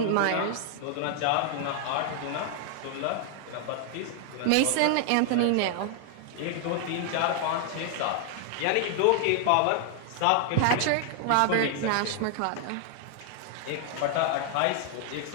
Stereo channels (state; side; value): different; both; correlation 0.00